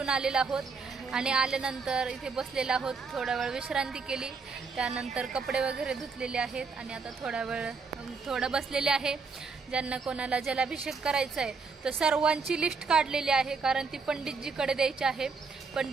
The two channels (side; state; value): left; quieter; 4.8 dB